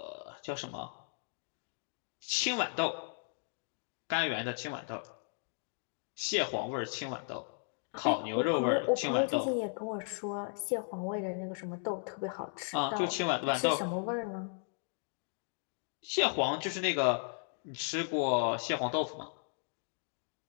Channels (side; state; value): right; silent; 54 dB below the other